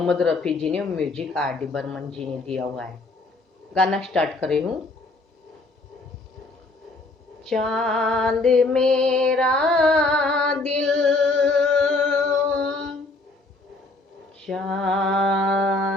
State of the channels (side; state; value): right; quieter; 3.1 dB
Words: रफ़ी जी ने, म्यूजिक आर डी बर्मन जी ने दिया हुआ है। गाना स्टार्ट कर रही हूँ। चांद मेरा दिल,